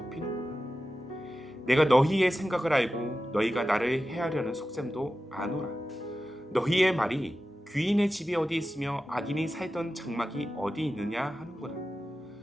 내가 너희의 생각을 알고 너희가 나를 해하려는 속셈도 아노라. 너희의 말이 귀인의 집이 어디 있으며 악인이 살던 장막이 어디 있느냐 하는구나.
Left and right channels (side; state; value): both; normal; correlation 0.93